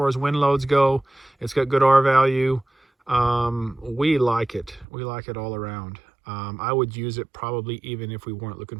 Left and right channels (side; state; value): left; drops out; at 4.9 s